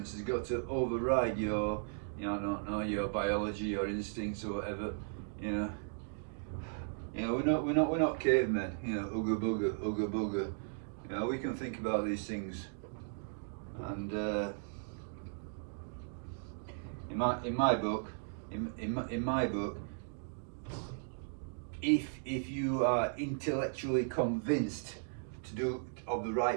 has got to override your, your biology, your instincts, or whatever. We're not cavemen. Ooga booga. We can think about these things, and in my book, if you are intellectually convinced to do of the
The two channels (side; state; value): left; silent; digital silence